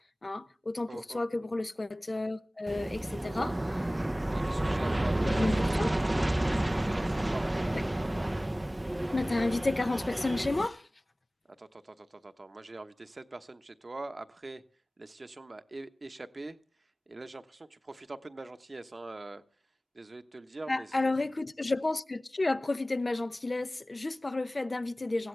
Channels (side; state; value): both; normal; correlation 0.98